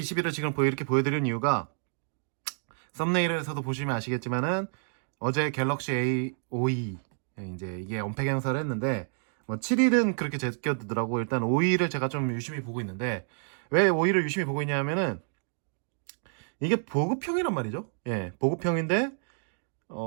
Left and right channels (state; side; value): silent; left; 58 dB below the other